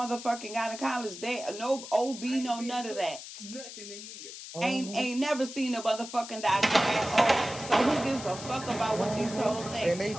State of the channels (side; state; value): left; noise; hiss, 12 dB below the sound